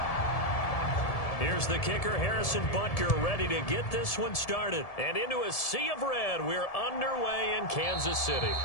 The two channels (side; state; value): right; late; 1.7 ms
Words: Here's the kicker, Harrison Butker, ready to get this one started. And into a sea of red, we're underway in Kansas City.